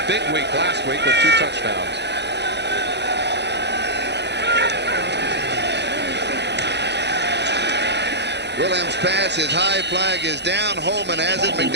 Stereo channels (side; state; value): left; late; 0.50 ms